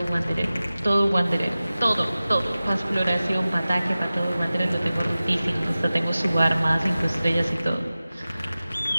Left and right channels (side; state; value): both; inverted; correlation -0.96